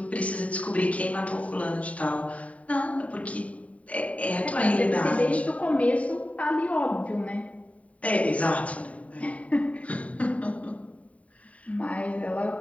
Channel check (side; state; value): right; late; 0.067 ms